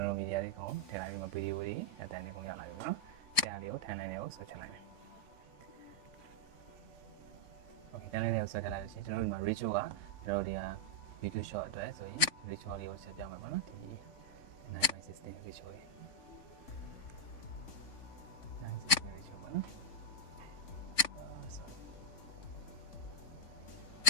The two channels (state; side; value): late; right; 3.5 ms